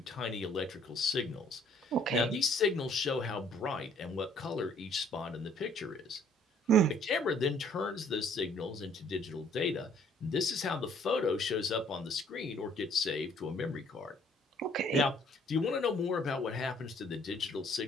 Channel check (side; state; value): both; normal; correlation 0.60